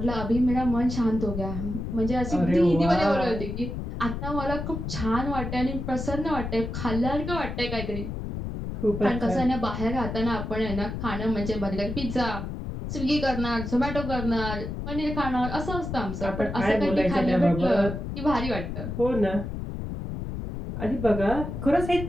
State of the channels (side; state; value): left; noise; rumble, 6 dB below the sound